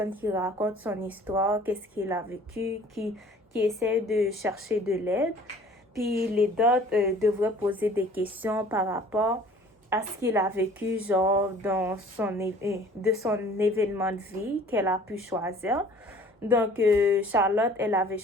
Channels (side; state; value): both; normal; correlation 0.51